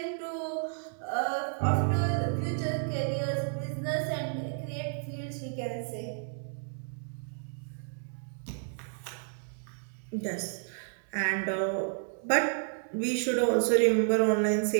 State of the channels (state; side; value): silent; left; 57 dB below the other